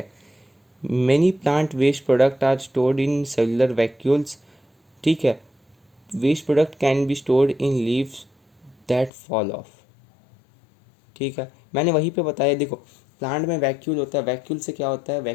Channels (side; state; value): right; drops out; at 9.1 s